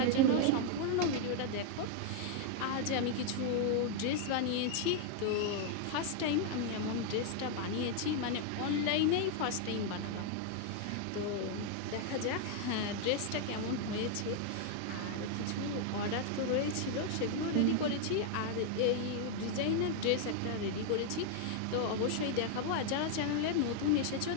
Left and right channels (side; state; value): both; different; correlation 0.00